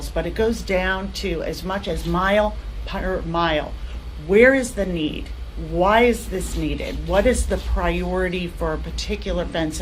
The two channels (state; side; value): identical; both; correlation 1.00